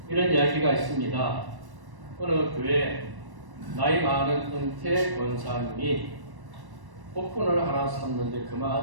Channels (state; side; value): late; left; 1.1 ms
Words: 이런 이야기가 있습니다. 어느 교회 나이 많은 은퇴 권사님이 복권을 하나 샀는데